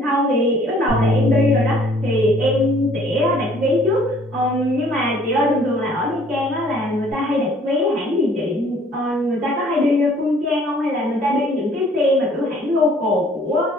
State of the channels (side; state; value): both; normal; correlation 0.58